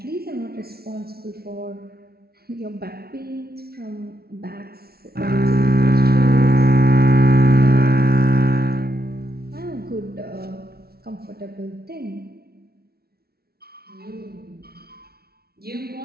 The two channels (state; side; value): late; left; 0.45 ms